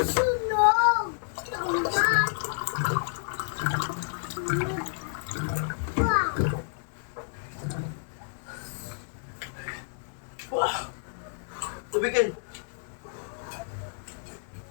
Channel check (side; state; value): right; silent; digital silence